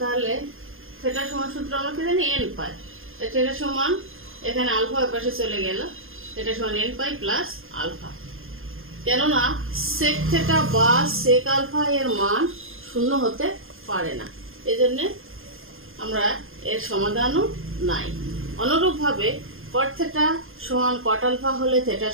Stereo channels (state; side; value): late; left; 0.60 ms